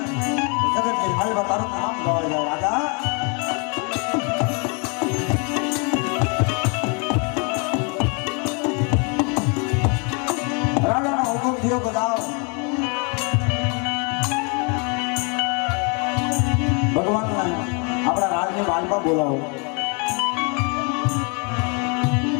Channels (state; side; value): quieter; right; 34.3 dB